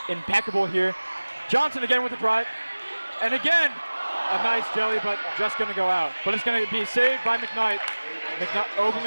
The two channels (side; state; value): both; inverted; correlation -1.00